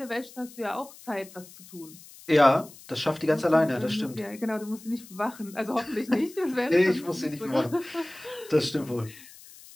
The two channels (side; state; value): left; noise; hiss, 20 dB below the sound